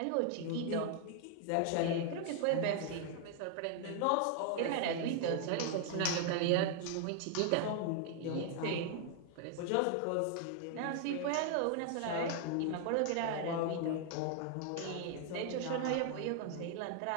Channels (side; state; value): both; different; correlation 0.00